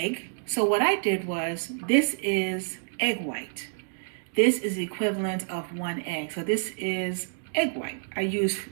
So what I did was, this is egg white. This is the equivalent of 1 egg. So this is egg white. I used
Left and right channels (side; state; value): left; silent; digital silence